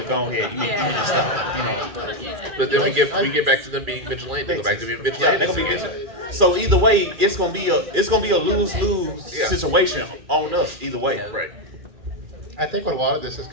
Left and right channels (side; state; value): left; late; 2.4 ms